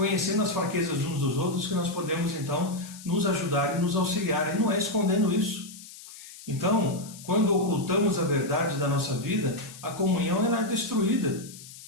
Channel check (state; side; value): noise; left; hiss, 16 dB below the sound